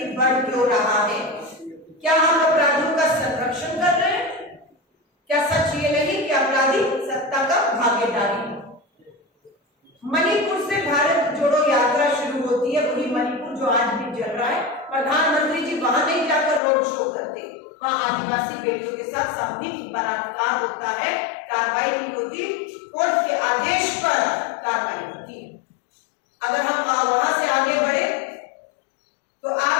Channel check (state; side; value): drops out; right; at 16.6 s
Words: बढ़ क्यों रहा है? क्या हम अपराधियों का संरक्षण कर रहे हैं? क्या सच ये नहीं कि अपराधी सत्ता का भागीदारी है? मणिपुर से भारत जोड़ो यात्रा शुरू होती है, वही मणिपुर जो आज भी चल रहा है। प्रधानमंत्री जी वहां नहीं जाकर रोड शो करते, वहां आदिवासी बेटियों के साथ सामूहिक बलात्कार होता है, कार्रवाई नहीं होती, कोर्ट के आदेश पर कार्रवाई होती है। अगर हम वहां से आगे बढ़े तो